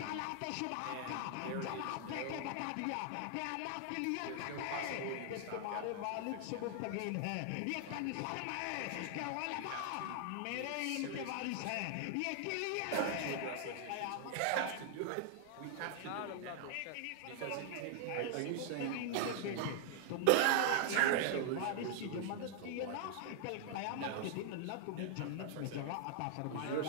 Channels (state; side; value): different; both; correlation 0.00